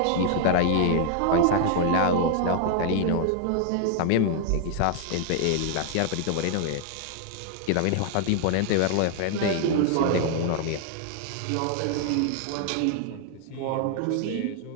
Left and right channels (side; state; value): both; different; correlation 0.00